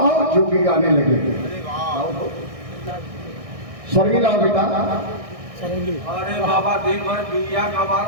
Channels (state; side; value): late; left; 1.6 ms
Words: जोगी गाने लगे। सरगी लाओ बेटा। अरे बाबा दिन भर बिया का